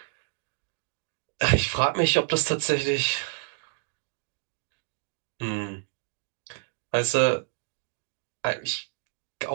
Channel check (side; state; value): left; silent; digital silence